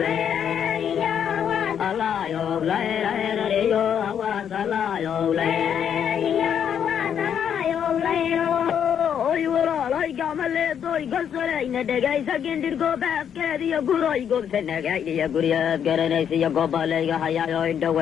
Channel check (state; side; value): quieter; right; 8.5 dB